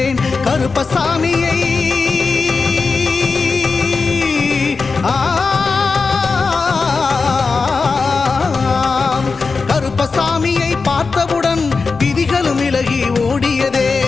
கருப்பசாமியை கருப்பசாமியை பார்த்தவுடன் விதிகளும் விலகி ஓடியதே.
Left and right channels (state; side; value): quieter; right; 4.5 dB